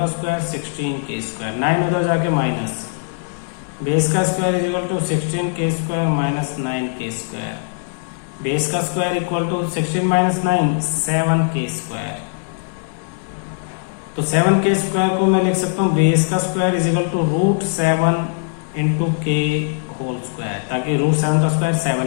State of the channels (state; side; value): silent; right; 65 dB below the other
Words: स्क्वायर 16k स्क्वायर। 9 उधर जाके माइनस, बेस का square is equal to 16k square minus 9k square. Base का square equal to 16 minus 9 7k square. तो 7k square को मैं लिख सकता हूँ बेस का square is equal to √7 into k whole square, ताकि √7 का स्क्वायर 7